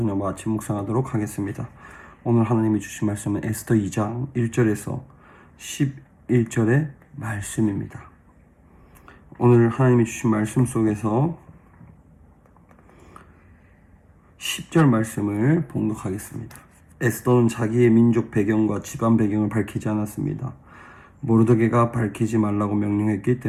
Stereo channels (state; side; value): identical; both; correlation 1.00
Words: 아침 묵상하도록 하겠습니다. 오늘 하나님이 주신 말씀은 에스더 2장 1절에서 11절의 말씀입니다. 오늘 하나님이 주신 말씀 속에서 10절 말씀을 봉독하겠습니다. 에스더는 자기의 민족 배경과 집안 배경을 밝히지 않았습니다. 모르드게가 밝히지 말라고 명령했기